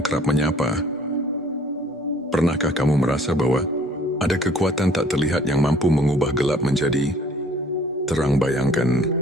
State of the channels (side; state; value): both; normal; correlation 0.56